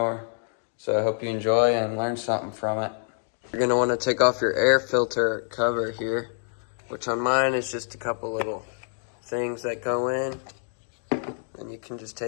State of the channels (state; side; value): silent; right; digital silence